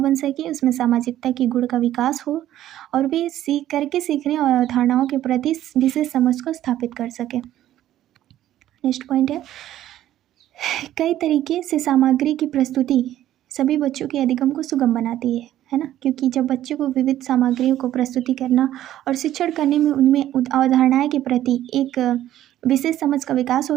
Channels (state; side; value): quieter; left; 12.8 dB